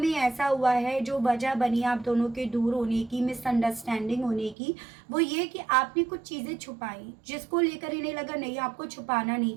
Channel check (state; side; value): drops out; left; at 4.5 s